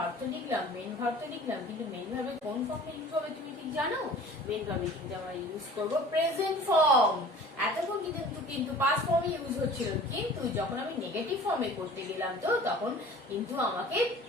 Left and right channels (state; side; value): normal; both; correlation 0.45